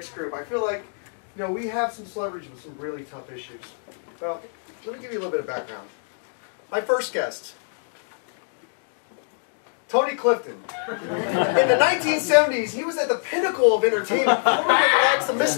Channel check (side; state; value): right; silent; digital silence